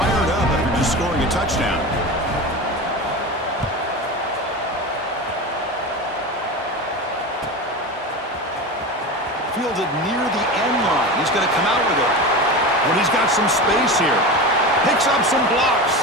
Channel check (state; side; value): normal; both; correlation 0.26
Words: up after just scoring a touchdown. Fielded near the end line. He's going to come out with it. When he's got some space here. Picks up some blocks.